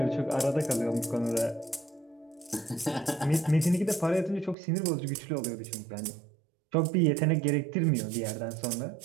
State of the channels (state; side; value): drops out; left; at 4.5 s